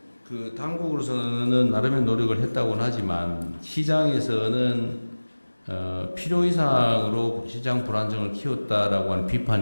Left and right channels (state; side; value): inverted; both; correlation -1.00